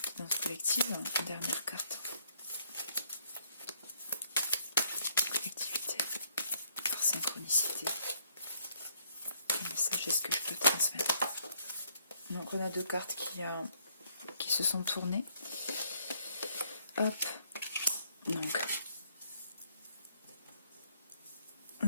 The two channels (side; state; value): both; inverted; correlation -0.68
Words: Guidance collective, dernière carte. Synchronicité. Quel message est-ce que je peux transmettre? Donc on a deux cartes qui se sont tournées. Hop. Donc